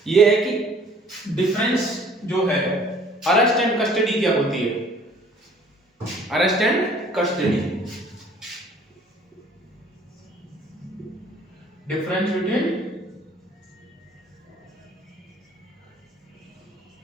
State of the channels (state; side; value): normal; both; correlation 0.55